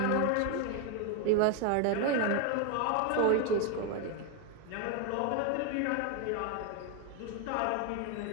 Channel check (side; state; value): both; different; correlation 0.01